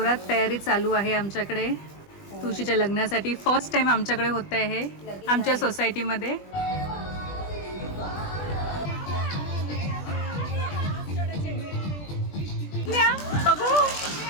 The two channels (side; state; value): right; late; 20 ms